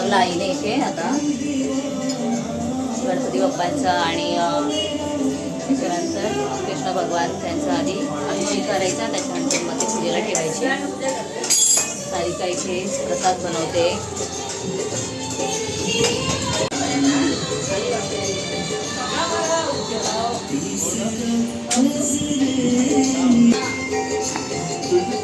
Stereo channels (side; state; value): both; identical; correlation 1.00